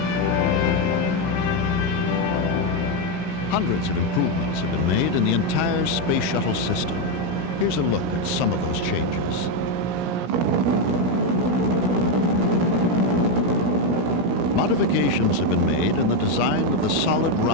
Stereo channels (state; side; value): normal; both; correlation 0.05